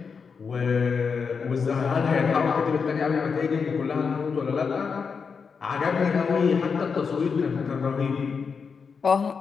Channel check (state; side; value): quieter; right; 5.7 dB